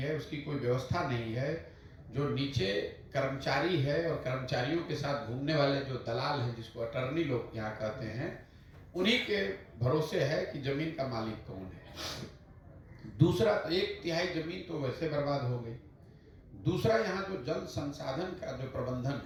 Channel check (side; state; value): both; identical; correlation 1.00